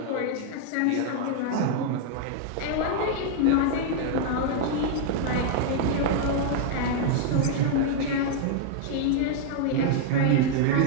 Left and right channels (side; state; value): both; different; correlation 0.00